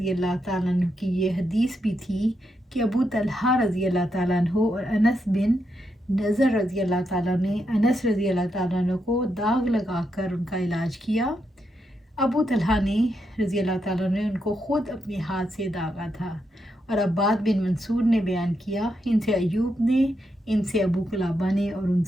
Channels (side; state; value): both; normal; correlation 0.82